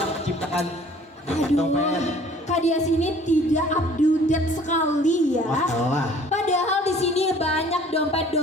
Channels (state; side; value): normal; both; correlation 0.53